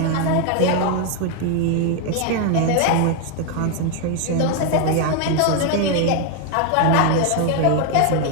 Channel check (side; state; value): both; different; correlation 0.01